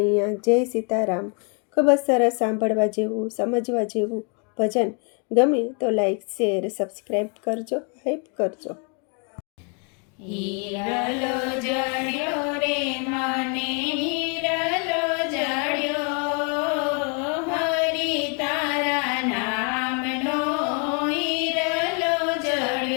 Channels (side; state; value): right; quieter; 37.5 dB